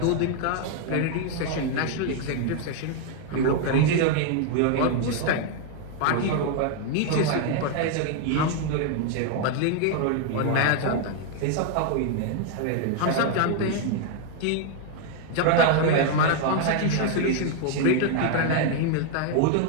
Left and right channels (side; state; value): both; different; correlation 0.00